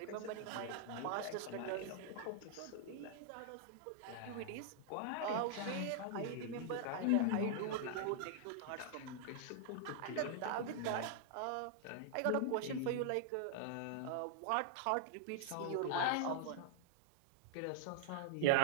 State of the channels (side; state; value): both; different; correlation -0.01